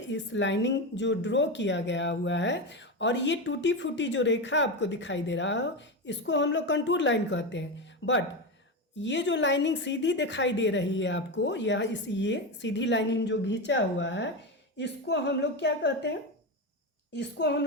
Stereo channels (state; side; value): normal; both; correlation 0.16